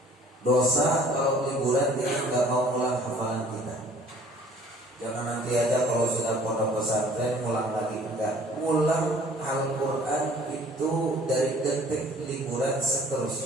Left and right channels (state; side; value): normal; both; correlation 0.53